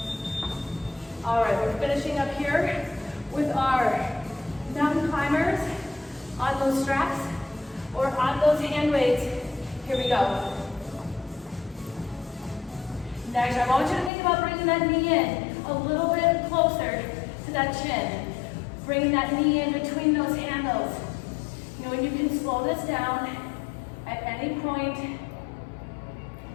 All right, we're finishing up here with our mountain climbers on those straps or on those hand weights. Here we go. Next, I want you to think about bringing that knee in a little bit closer to that chin. Bringing that knee in between those handles. You know, and you can slow this down at any point.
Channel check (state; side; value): drops out; right; at 14.1 s